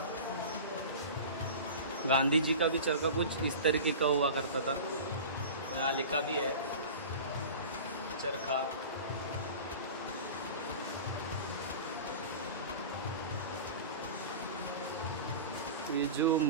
गांधी जी का भी चरखा कुछ इस तरीके का हुआ करता था। यहाँ लिखा भी है चरखा। ये जो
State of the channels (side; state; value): both; inverted; correlation -0.34